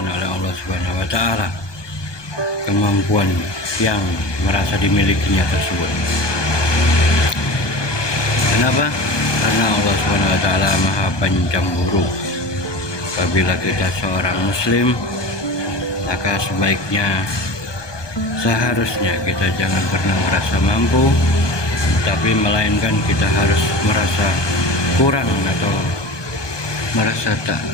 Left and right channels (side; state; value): right; late; 1.2 ms